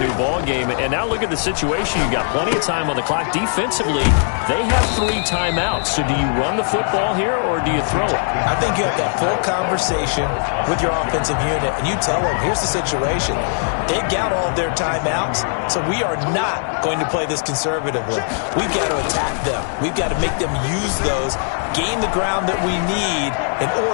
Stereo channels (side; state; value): right; silent; digital silence